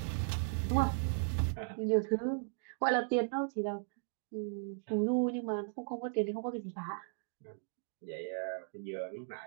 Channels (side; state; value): left; silent; digital silence